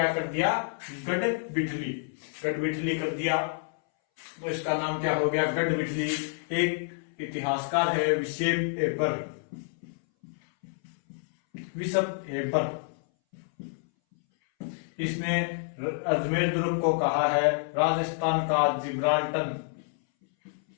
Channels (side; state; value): right; silent; 59 dB below the other